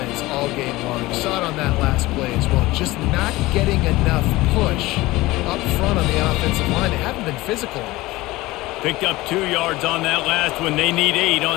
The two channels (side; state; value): right; quieter; 19.4 dB